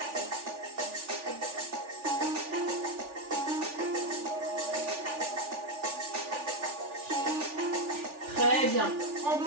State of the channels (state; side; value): late; left; 3.4 ms